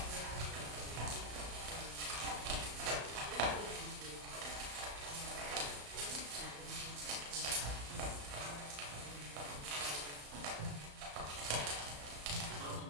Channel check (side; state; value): left; late; 35 ms